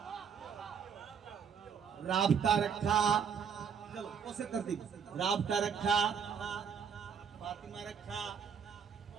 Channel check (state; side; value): quieter; left; 6.9 dB